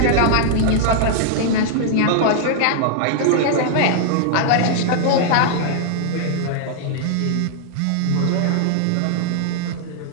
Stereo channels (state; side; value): different; both; correlation -0.01